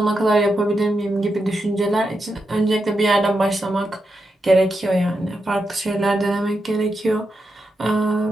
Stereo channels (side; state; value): both; normal; correlation 0.86